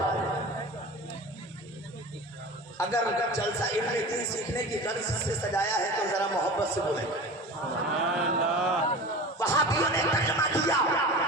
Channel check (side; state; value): both; normal; correlation 0.34